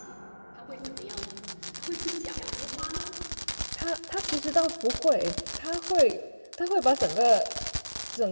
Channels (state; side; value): inverted; both; correlation -1.00